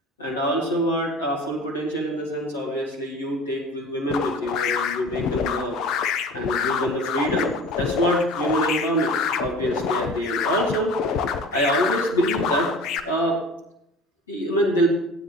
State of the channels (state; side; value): normal; both; correlation 0.40